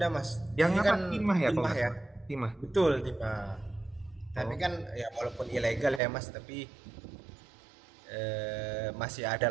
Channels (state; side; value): drops out; left; at 6.0 s